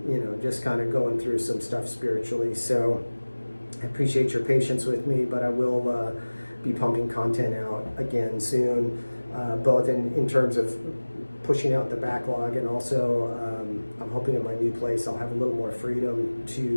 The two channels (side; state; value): both; inverted; correlation -1.00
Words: you know, just kind of going through some stuff spiritually. So I appreciate your patience with me, but I will be pumping content out again soon, both in terms of pushing out the backlog and also I'm hoping in my new place I'll have a little more freedom